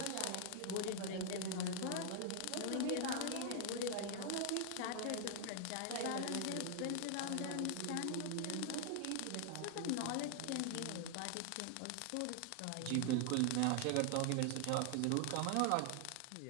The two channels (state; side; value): different; both; correlation 0.00